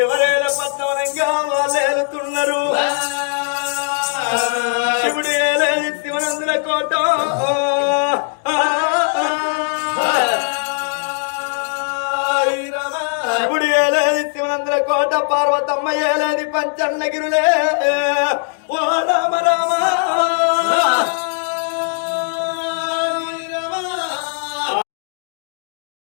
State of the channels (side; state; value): right; silent; 67 dB below the other